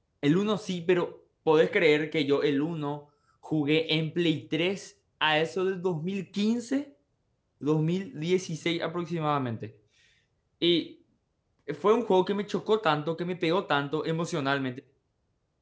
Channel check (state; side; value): identical; both; correlation 1.00